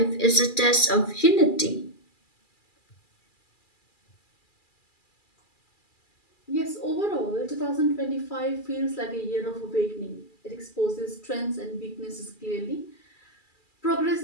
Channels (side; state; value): right; late; 2.4 ms